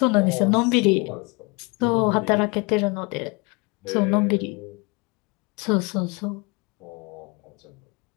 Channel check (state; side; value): quieter; right; 28.8 dB